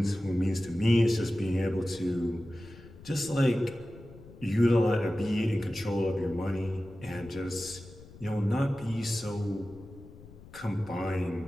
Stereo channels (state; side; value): noise; left; rumble, 19 dB below the sound